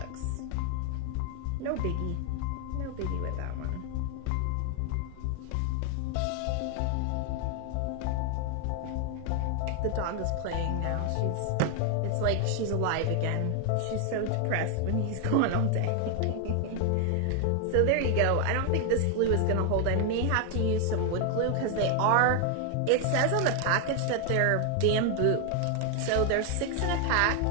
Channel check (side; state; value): both; different; correlation 0.01